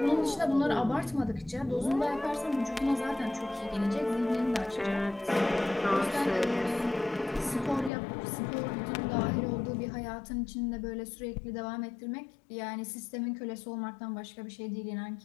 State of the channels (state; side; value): drops out; right; at 7.9 s